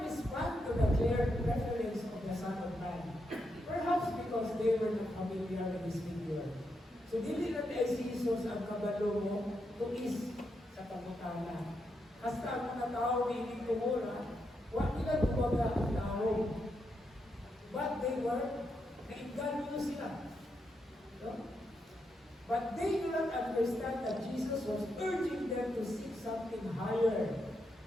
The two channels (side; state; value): both; normal; correlation 0.83